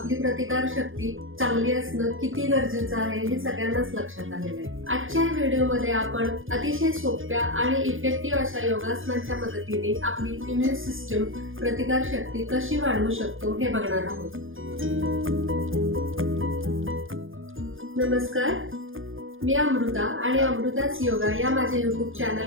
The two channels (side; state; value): left; late; 0.59 ms